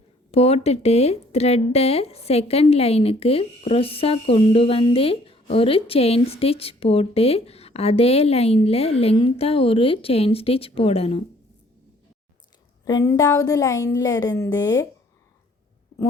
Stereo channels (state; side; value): normal; both; correlation 0.59